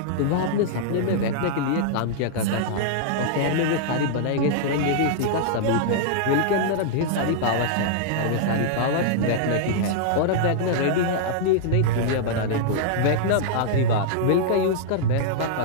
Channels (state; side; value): different; both; correlation -0.01